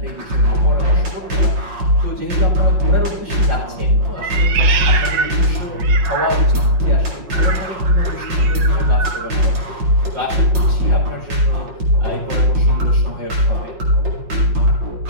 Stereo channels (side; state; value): left; late; 5.5 ms